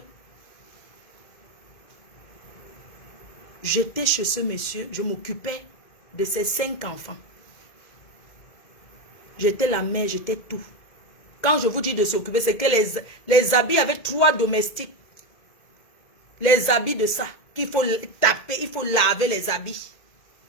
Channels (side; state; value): right; late; 2.1 ms